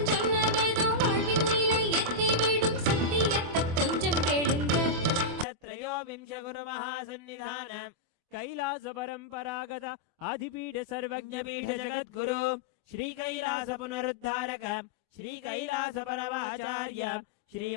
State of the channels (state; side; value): late; left; 24 ms